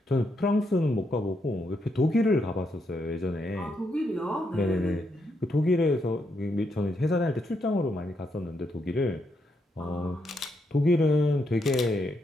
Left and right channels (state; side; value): normal; both; correlation 0.79